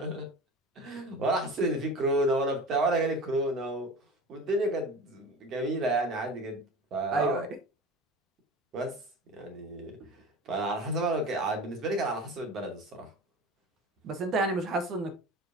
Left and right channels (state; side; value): normal; both; correlation 0.34